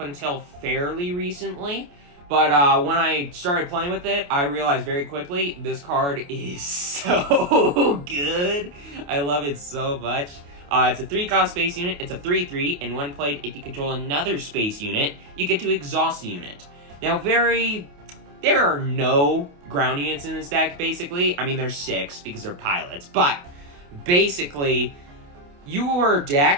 fairly recently. But when I started playing with it, I realized very quickly this card is so good. I love it so much. It's a 3-cost space unit. It's a 3/3, and when played, if you control another space unit, you get to exhaust the unit. Now, there are no ground units in this deck, basically. I mean, there's 6 because they're pilots, but basically, your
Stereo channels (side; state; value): left; late; 28 ms